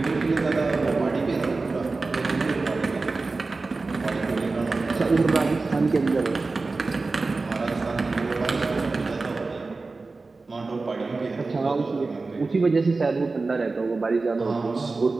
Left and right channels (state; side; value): quieter; left; 3.7 dB